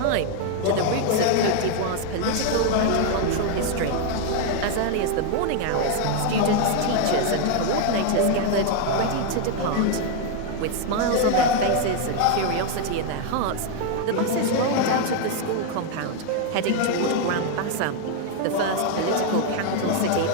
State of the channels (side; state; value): both; different; correlation 0.01